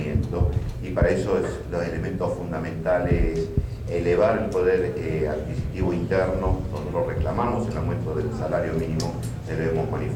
y para eso los elementos fundamentales: elevar el poder adquisitivo interno. Nosotros reclamamos el aumento del salario mínimo, se lo hemos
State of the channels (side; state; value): both; identical; correlation 1.00